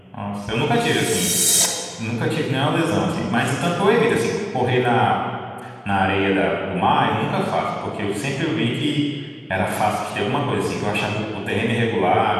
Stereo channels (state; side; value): identical; both; correlation 1.00